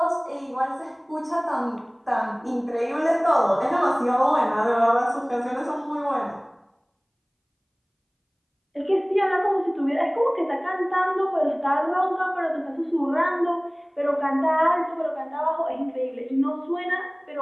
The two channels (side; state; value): both; identical; correlation 1.00